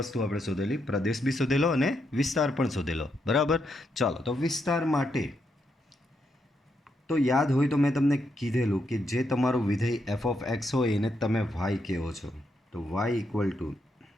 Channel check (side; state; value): both; normal; correlation 0.80